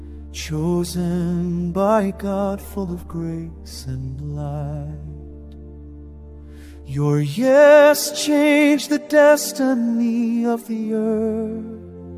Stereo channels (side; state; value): both; identical; correlation 1.00